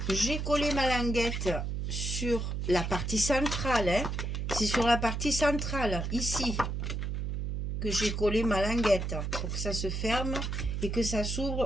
j'ai collé ma languette sur la partie centrale. Hein. C'est sur la partie centrale, ici, que j'ai collé ma languette pour que ça se ferme et que ça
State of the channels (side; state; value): right; noise; hum, 2 dB below the sound